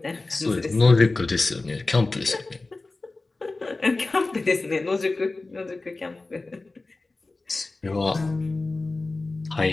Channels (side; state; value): right; quieter; 3.4 dB